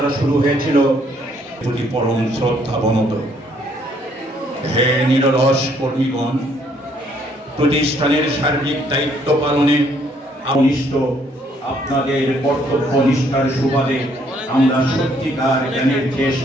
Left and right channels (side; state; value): both; normal; correlation 0.67